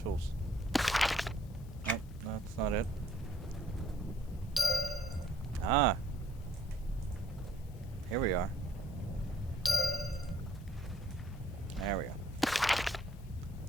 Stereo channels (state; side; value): normal; both; correlation 0.62